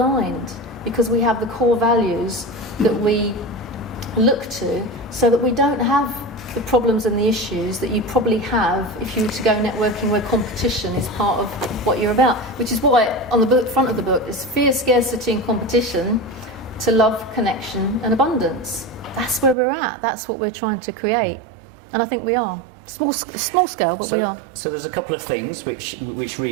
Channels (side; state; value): left; drops out; at 19.6 s